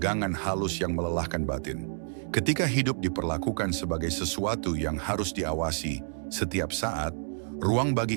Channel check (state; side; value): silent; left; digital silence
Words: halus yang melelahkan batin. Ketika hidup diperlakukan sebagai sesuatu yang harus diawasi setiap saat, ruang